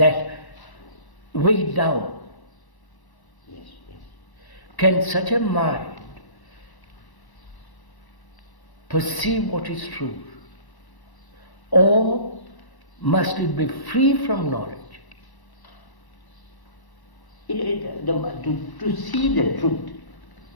weighed down. Yes. Can such a mind perceive what is true? Or must it be free from knowledge? To see the truth,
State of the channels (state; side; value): late; right; 1.1 ms